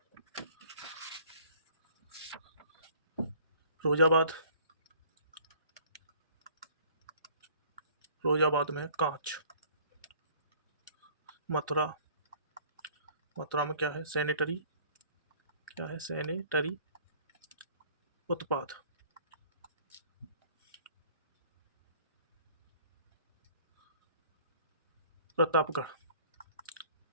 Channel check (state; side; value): inverted; both; correlation -0.53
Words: फिरोजाबाद, फिरोजाबाद में कांच। मथुरा, मथुरा में क्या है? सैनिटरी। क्या है? सैनिटरी उत्पाद। प्रतापगढ़,